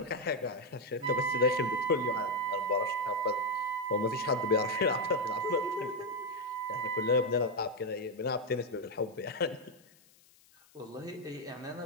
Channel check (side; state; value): left; noise; hiss, 29 dB below the sound